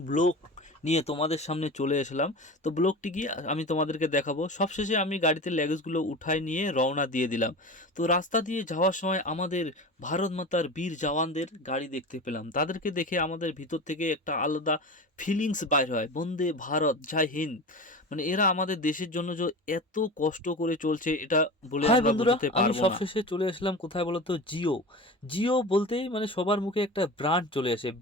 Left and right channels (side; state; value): both; normal; correlation 0.30